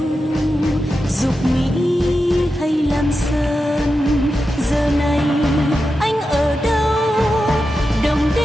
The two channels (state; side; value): normal; both; correlation 0.90